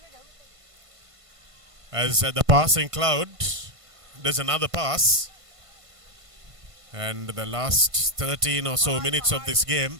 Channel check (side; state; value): left; late; 1.5 ms